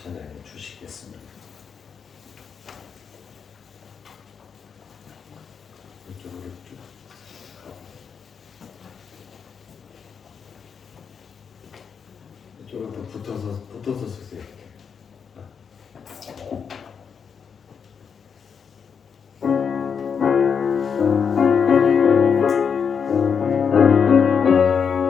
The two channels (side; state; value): right; quieter; 6.6 dB